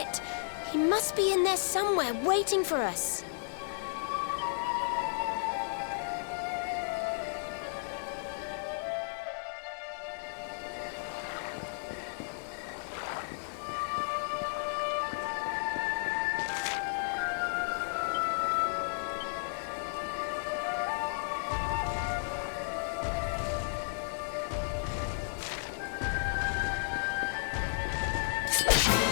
He must be in there somewhere, waiting for us.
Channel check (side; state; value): right; silent; digital silence